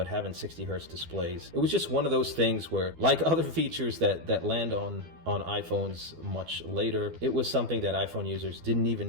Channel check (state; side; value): late; left; 12 ms